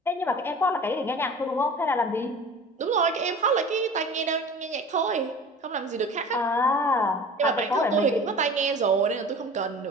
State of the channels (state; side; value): normal; both; correlation 0.40